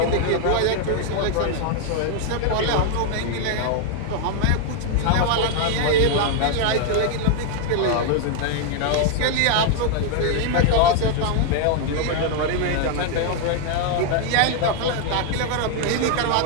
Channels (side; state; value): both; different; correlation 0.00